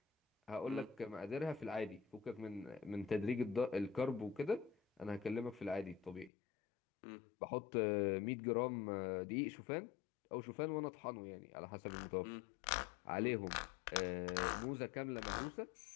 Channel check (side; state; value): right; drops out; at 6.3 s